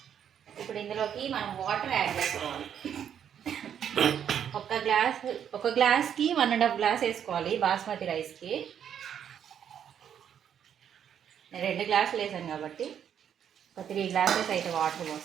ఇప్పుడు ఇందులోకి మనం వాటర్ యాడ్ చేసుకోవాలి. ఒక గ్లాస్కి 1.5 గ్లాస్ వేసుకోవాలి బాస్మతి రైస్కి. నేను 2 గ్లాసులు వేసాను కాబట్టి ఒక 3 గ్లాసెస్ అయితే వాటర్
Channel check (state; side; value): quieter; left; 8.9 dB